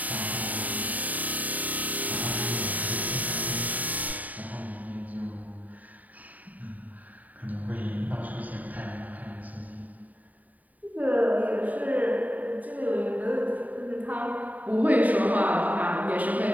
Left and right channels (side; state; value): left; late; 0.076 ms